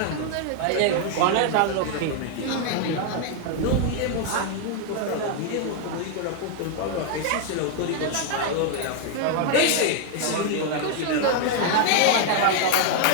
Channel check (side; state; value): both; different; correlation 0.00